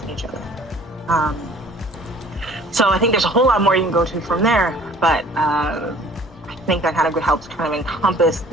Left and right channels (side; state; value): both; normal; correlation 0.51